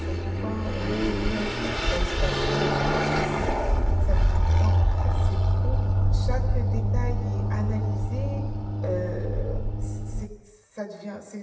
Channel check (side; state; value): both; identical; correlation 1.00